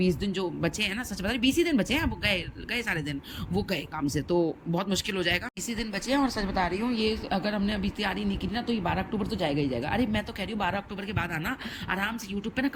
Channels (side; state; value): both; identical; correlation 1.00